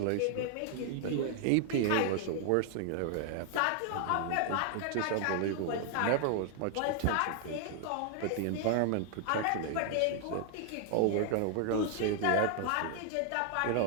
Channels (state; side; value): different; both; correlation 0.00